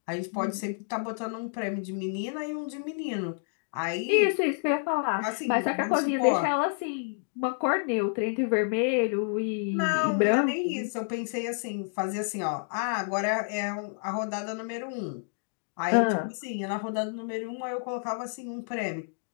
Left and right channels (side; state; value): right; silent; digital silence